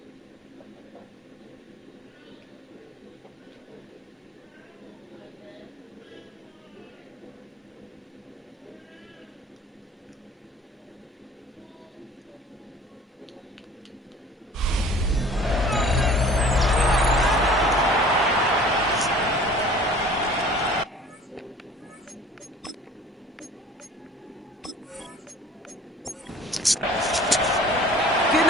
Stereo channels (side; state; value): both; normal; correlation 0.48